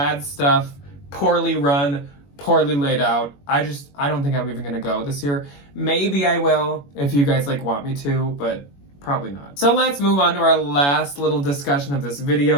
stuff, poorly run, poorly laid out. I don't think I'm even gonna go this year. Maybe I will if you guys like want me to, but probably not. So let's move on to our last little discussion of this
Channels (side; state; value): right; late; 21 ms